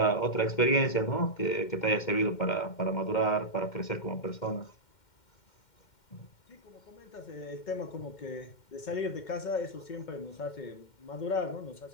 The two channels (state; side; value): late; right; 2.1 ms